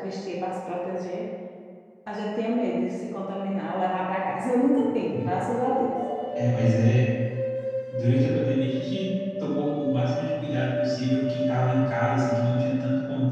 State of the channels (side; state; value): both; identical; correlation 1.00